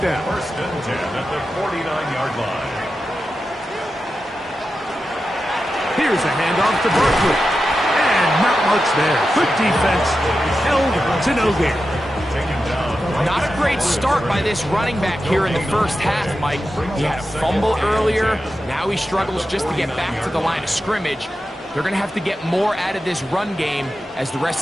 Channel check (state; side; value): normal; both; correlation 0.91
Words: down. 1st and 10 at the 49-yard line. Here's a handoff to Barkley. And Not much there. Good defense. Held to no gain. Not a great start by this running back here in the first half, Mike. He had a fumble earlier. Now he struggles just to get back to the line of scrimmage. They're going to have to get more out of this run game as the